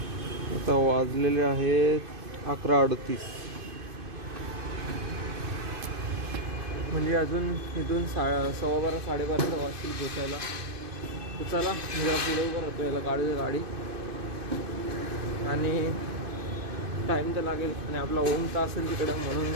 आता वाजलेले आहेत 11:38, म्हणजे अजून इथून 12:15 12:30 वाजतील पोचायला. तर चला मी जरा पुढे उभं राहतो, याला गाडी आणि टाईम तर लागेल आणि आपला ओम तर असेल तिकडं म्हणून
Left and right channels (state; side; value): late; left; 2.5 ms